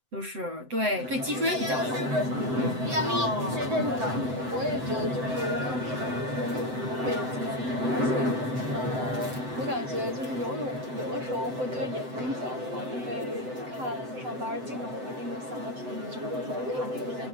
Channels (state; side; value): late; left; 7.8 ms